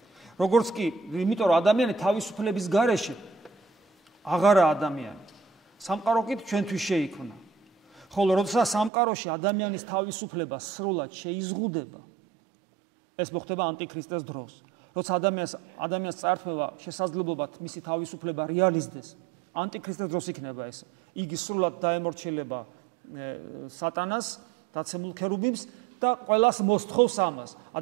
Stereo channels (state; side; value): drops out; left; at 8.9 s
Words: როგორც კი, იმიტომ რომ ადამიანი თავისუფლების გარეშე აღარა ადამიანი. სამყარო კი ჩვენთვის შეიქმნა. ხოლო როდესაც სამყაროში ადამიანის თავისუფლება სრულად შეიზღუდება, ეს მოხდება ანტიქრისტეს დროს. როცა ადამიანს წარქმევა შესაძლებლობა მისი თავისუფლება რეალიზდეს, ანტიქრისტეს დროს იქნება ეს. იგი სრულად დაემორჩილება სატანას, დაცემულ ქერუბიმს და ყველას მოსთხოვს ამას.